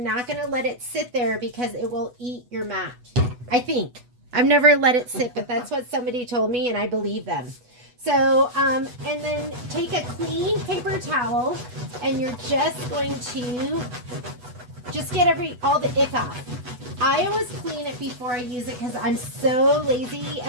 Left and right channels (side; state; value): left; late; 8.1 ms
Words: going to let it sit there because it will eat your mat. I think. I've never let it sit, but that's what somebody told me, and I believe them. So, and then take a clean paper towel, and you're just going to just get all the ick off. I always clean it before I use it because I'm so lazy,